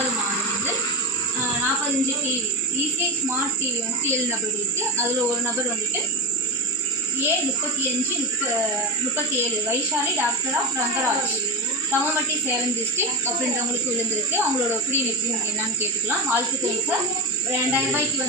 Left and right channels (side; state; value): both; normal; correlation 0.18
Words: மாதம் வந்து 45 டிவி ஈஸி ஸ்மார்ட் டிவி வந்து 7 நபர்களுக்கு. அதில் ஒரு நபர் வந்துட்டு A3537 Vaishali daughter of Rangaraj தமமட்டி சேலம் டிஸ்ட்ரிக்ட் அப்படின்றவங்களுக்கு விழுந்திருக்கு. அவங்களோட ஒப்பீனியன் எப்படி என்னன்னு கேட்டுக்கலாம். வாழ்த்துக்கள் சார். 2000 ரூபாய்க்கு